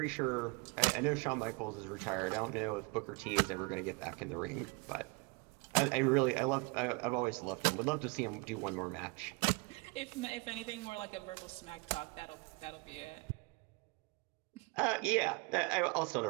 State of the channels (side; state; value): left; quieter; 29.6 dB